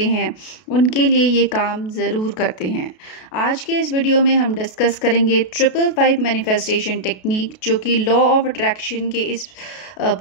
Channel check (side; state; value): right; late; 32 ms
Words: हैं उनके लिए ये काम ज़रूर करते हैं। आज के इस वीडियो में हम डिस्कस करेंगे 555 मैनिफेस्टेशन टेक्निक, जो कि लॉ ऑफ अट्रैक्शन के इस